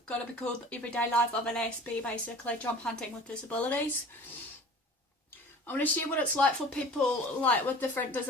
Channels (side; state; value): both; normal; correlation 0.43